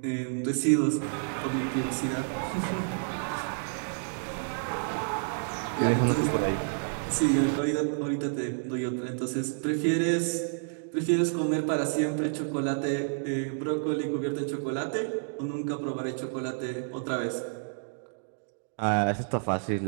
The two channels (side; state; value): left; silent; digital silence